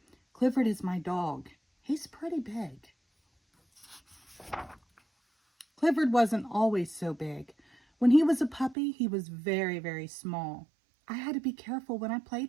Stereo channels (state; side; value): drops out; left; at 8.8 s